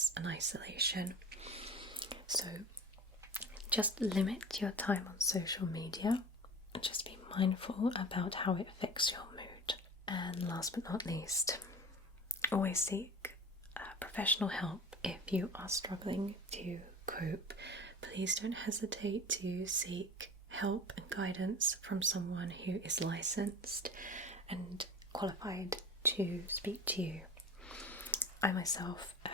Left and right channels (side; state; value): both; normal; correlation 0.37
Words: and isolation. So just limit your time on social media and just be mindful about how it affects your mood. And last but not least, always seek professional help if you are struggling to cope. Please don't hesitate to seek help and guidance from someone who is licensed and qualified to speak to you. I myself